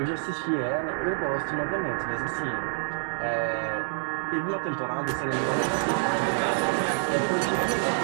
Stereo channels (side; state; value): left; silent; 60 dB below the other